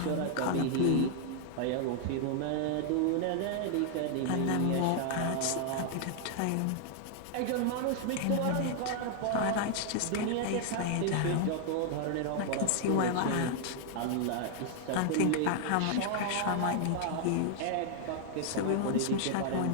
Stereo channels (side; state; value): both; different; correlation 0.00